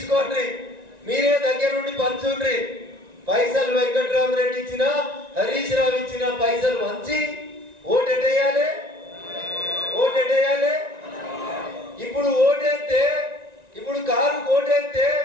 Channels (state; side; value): late; left; 1.9 ms